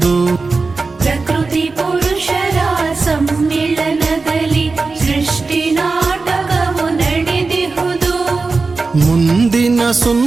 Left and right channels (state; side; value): quieter; left; 4.0 dB